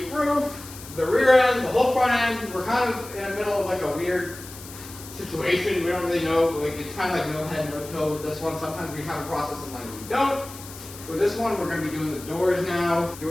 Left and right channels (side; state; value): left; noise; hiss, 15 dB below the sound